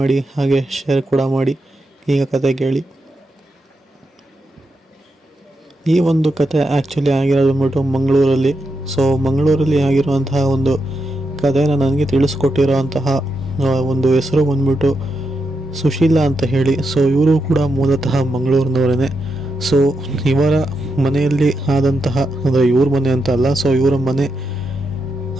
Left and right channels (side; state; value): both; normal; correlation 0.85